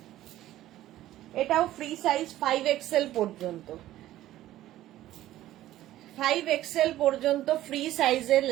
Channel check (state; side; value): quieter; left; 14.2 dB